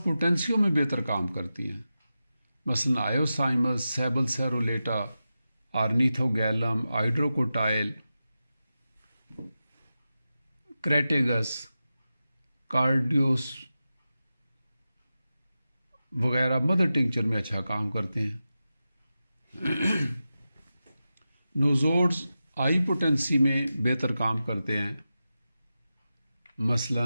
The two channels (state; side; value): inverted; both; correlation -0.92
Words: پوٹینسیوں میں بہتر کام کرتی ہیں، مثلا آئیوسائمس، سیبل سیرولیٹا، آرنیتھوگیلم، ہائیڈروکوٹائل، کریٹیگس، کارڈیوس وغیرہ مدر ٹنکچر میں اچھا کام کرتے ہیں۔ نوزوڈز ہائی پوٹینسی میں بہتر کام کرتے ہیں،